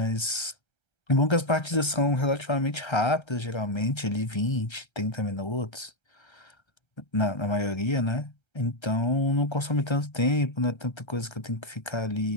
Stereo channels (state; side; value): late; right; 1.3 ms